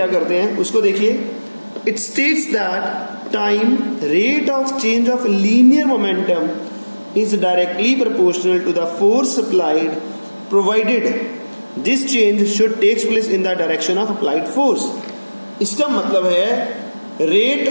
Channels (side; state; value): both; inverted; correlation -1.00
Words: करते हैं उसको देखिए। It states that time rate of change of linear momentum is directly proportional to the force applied, provided this change should takes place in the direction of applied force. इसका मतलब है rate